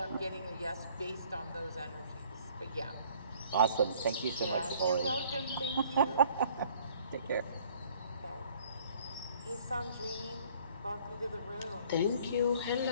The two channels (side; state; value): both; inverted; correlation -0.57